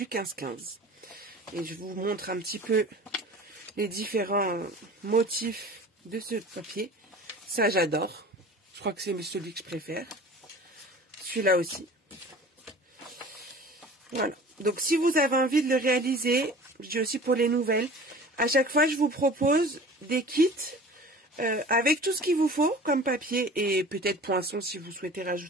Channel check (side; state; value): both; normal; correlation 0.42